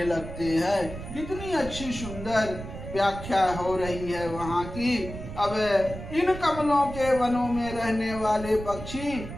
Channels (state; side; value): noise; right; rumble, 10 dB below the sound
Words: लगते हैं। कितनी अच्छी सुंदर व्याख्या हो रही है वहाँ की। अब इन कमलों के वनों में रहने वाले पक्षी